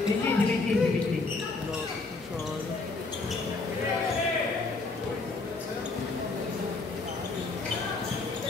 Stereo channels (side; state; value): right; quieter; 3.7 dB